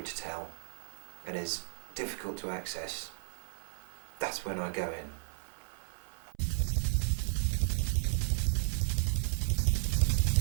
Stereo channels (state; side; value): silent; left; 55 dB below the other